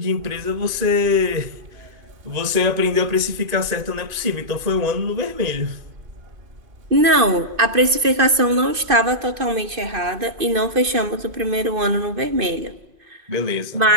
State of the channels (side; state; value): left; late; 2.6 ms